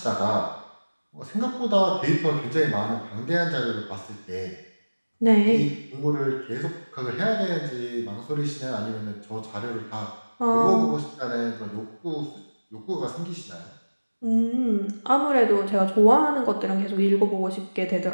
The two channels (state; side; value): inverted; both; correlation -1.00